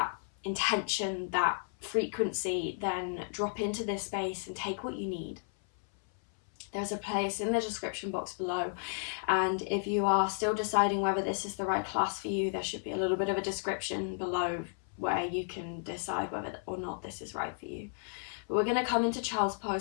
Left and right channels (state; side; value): silent; right; 56 dB below the other